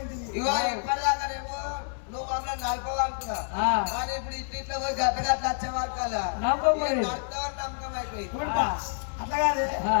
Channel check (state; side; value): silent; right; digital silence